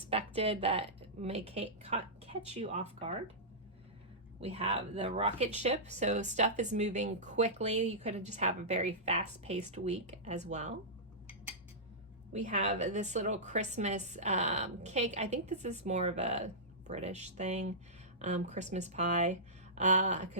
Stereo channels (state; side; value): normal; both; correlation -0.16